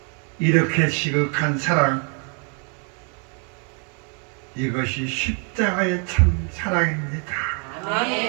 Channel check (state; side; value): quieter; left; 39.3 dB